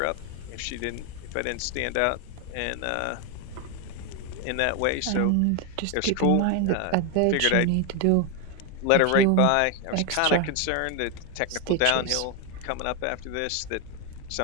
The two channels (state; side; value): different; both; correlation 0.01